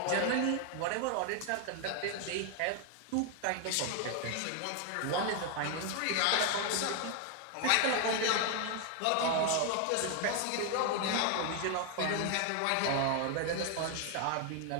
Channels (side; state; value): both; different; correlation 0.00